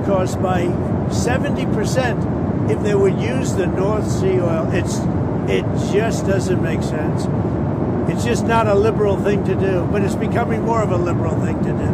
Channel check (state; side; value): identical; both; correlation 1.00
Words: costs by 70% if they would use the North Sea oil. It just doesn't make sense. It's just not a liberal thing to do, but it's becoming more of a liberal thing to do.